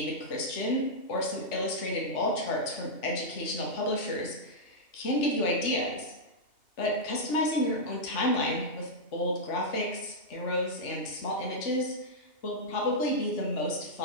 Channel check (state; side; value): late; right; 2.7 ms